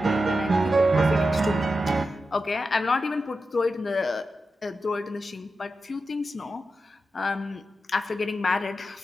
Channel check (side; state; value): both; normal; correlation 0.90